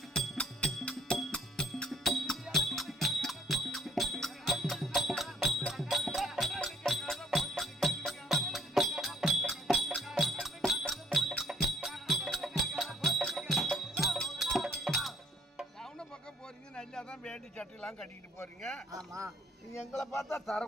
வேண்டி சட்டையெல்லாம் கட்டிக்கிட்டு போறீங்க. ஆமா. நீங்க எங்களை பார்த்தா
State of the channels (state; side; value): normal; both; correlation 0.63